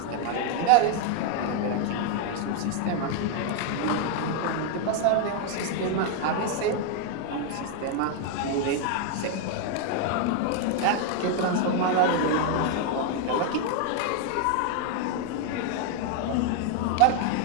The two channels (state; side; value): different; both; correlation 0.00